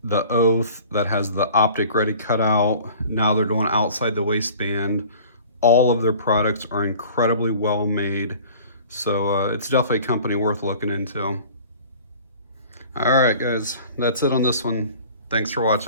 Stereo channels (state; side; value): inverted; both; correlation -0.46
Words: the Oath that has the optic ready cutout. Now they're doing outside the waistband. All of their products are incredibly well made. So it's definitely a company worth looking into. All right, guys, that's it on this one. Thanks for